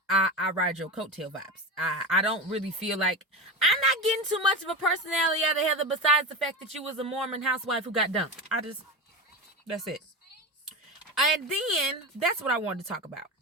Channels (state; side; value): normal; both; correlation 0.23